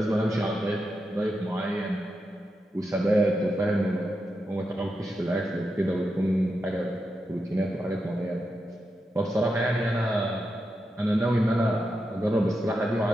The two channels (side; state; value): both; normal; correlation 0.87